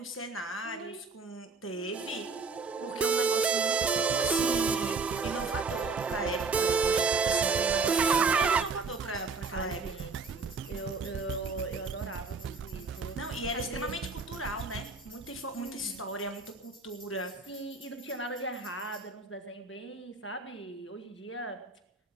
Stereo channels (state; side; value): quieter; left; 4.3 dB